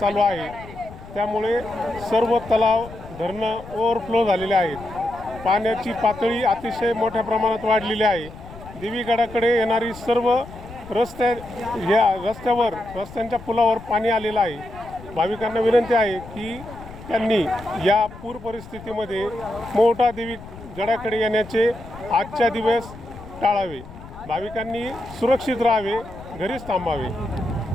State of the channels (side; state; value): left; noise; rumble, 16 dB below the sound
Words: आहे। त्यामुळे सर्व तलाव धरणं ओव्हरफ्लो झालेले आहेत। पाण्याची पातळी अतिशय मोठ्या प्रमाणात वाढलेली आहे। देवीगडाकडे येणारी सर्व रस्त्यांच्या पुलावर पाणी आलेलं आहे। भाविकांना विनंती आहे की त्यांनी या पूर परिस्थितीमध्ये मोहटा देवी गडाकडे येण्याचे आजच्या दिवस टाळावे। भाविकांनी सुरक्षित राहावे, घरीच थांबावे।